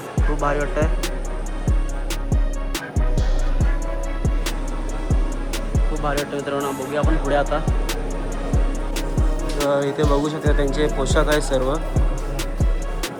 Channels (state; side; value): identical; both; correlation 1.00